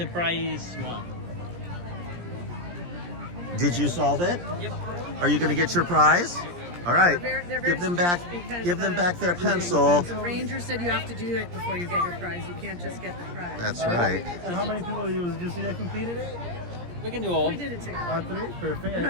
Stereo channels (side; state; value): left; late; 17 ms